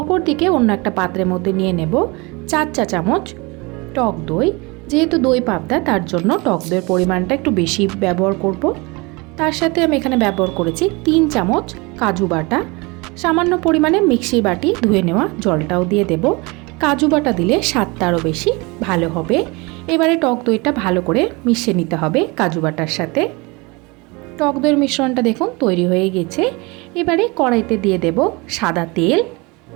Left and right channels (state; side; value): quieter; left; 26.3 dB